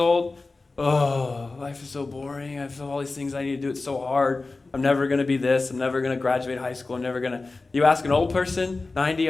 oh, life is so boring. I have all these things I need to do. It's so hard. I'm never going to be this. I'm never going to graduate high school. I'm never going to. You ask an old person, 90,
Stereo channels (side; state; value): right; quieter; 3.5 dB